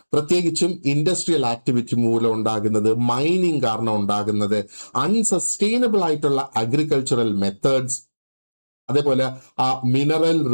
പ്രത്യേകിച്ചും ഇൻഡസ്ട്രിയൽ ആക്ടിവിറ്റി മൂലം ഉണ്ടാകുന്നത്, മൈനിങ് കാരണം ഉണ്ടാകുന്നത്, അൺസസ്റ്റൈനബിൾ ആയിട്ടുള്ള അഗ്രികൾച്ചറൽ മെത്തേഡ്സ്, അതേപോലെ ആ മിനറൽ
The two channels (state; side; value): inverted; both; correlation -1.00